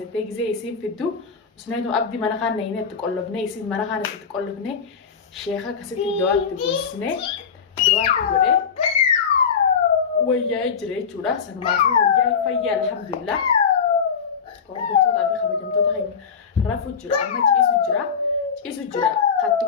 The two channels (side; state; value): right; quieter; 6.4 dB